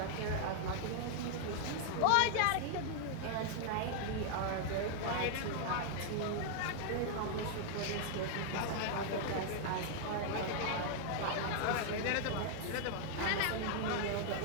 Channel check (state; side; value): different; both; correlation 0.00